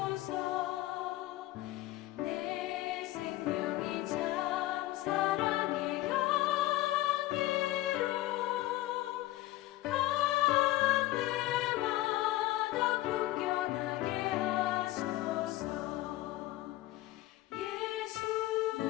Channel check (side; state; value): right; quieter; 16.7 dB